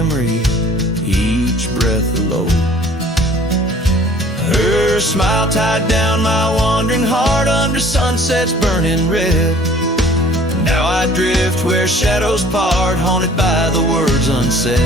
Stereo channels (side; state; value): both; normal; correlation 0.52